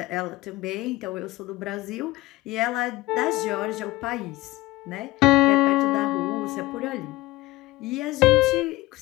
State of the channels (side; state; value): right; quieter; 19.2 dB